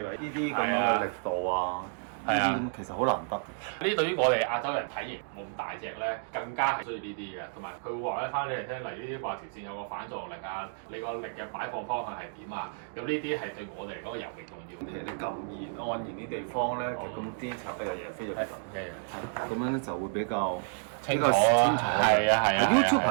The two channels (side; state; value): left; silent; digital silence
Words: 話呢啲咁樣嘅力度啊，呢啲咁其實好難得嘅。呢對於我哋亞洲人體型冇咁大隻咧，更加係需要呢啲嘅。同埋佢會話咧翻俾你聽，例如呢啲話條線有個反撞力啊，你個力嘅擺放方向係點啊？咁呢啲係對我哋嚟講尤其重要。其實你咁延按延啲地方咧，其實咁 detail 嘅嘢非常之咁樣就會比較清楚。係啊。